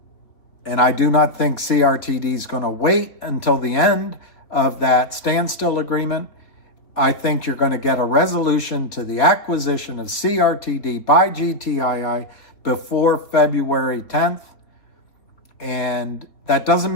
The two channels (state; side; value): late; right; 3.6 ms